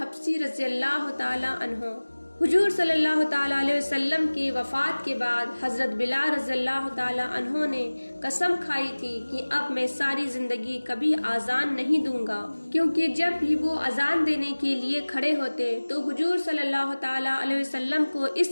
رضی اللہ تعالی عنہ۔ حضور صلی اللہ تعالی علیہ وسلم کی وفات کے بعد حضرت بلال رضی اللہ تعالی عنہ نے قسم کھائی تھی کہ اب میں ساری زندگی کبھی اذان نہیں دوں گا، کیونکہ جب بھی وہ اذان دینے کے لیے کھڑے ہوتے تو حضور صلی اللہ تعالی علیہ وسلم کو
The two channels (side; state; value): both; inverted; correlation -1.00